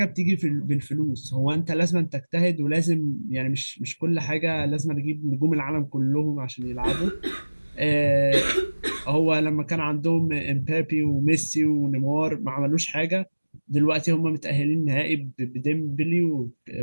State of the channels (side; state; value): both; inverted; correlation -1.00